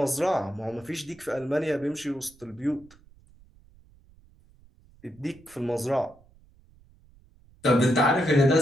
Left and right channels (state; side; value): noise; right; rumble, 28 dB below the sound